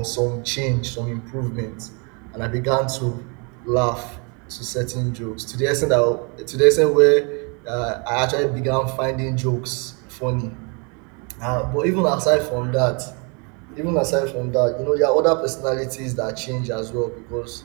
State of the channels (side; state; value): left; quieter; 34.2 dB